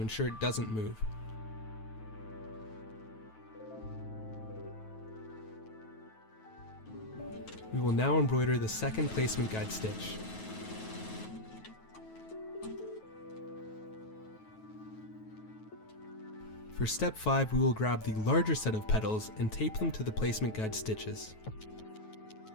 ensure it doesn't move. We will now embroider the second placement guide stitch. For step 5, we will grab the larger set of petals and tape them to the placement guide stitches.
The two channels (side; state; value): right; late; 9.3 ms